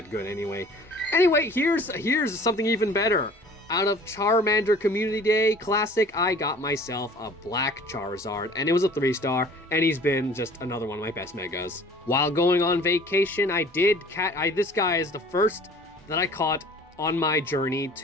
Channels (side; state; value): both; normal; correlation 0.49